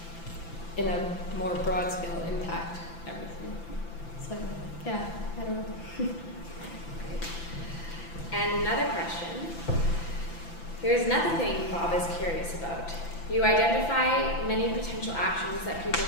in a more broad scale, impact everything. So, yeah, I don't know. And another question. Here's another thing Bob is curious about. You identify many potential actions that people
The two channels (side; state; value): right; late; 5.9 ms